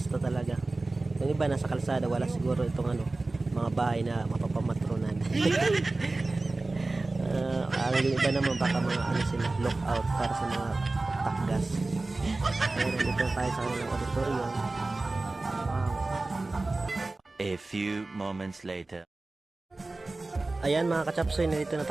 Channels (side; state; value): left; quieter; 3.2 dB